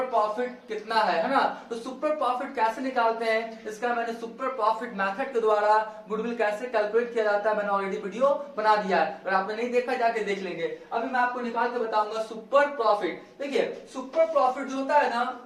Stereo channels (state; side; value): identical; both; correlation 1.00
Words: प्रॉफिट कितना है ना। तो सुपर प्रॉफिट कैसे निकालते हैं, इसका मैंने सुपर प्रॉफिट मेथड के द्वारा गुडविल कैसे कैलकुलेट किया जाता है मैंने ऑलरेडी वीडियो बना दिया है। अगर आपने नहीं देखा जाके देख लेंगे। अभी मैं आपको निकाल के बताऊंगा सुपर प्रॉफिट। देखिए सुपर प्रॉफिट जो होता है ना,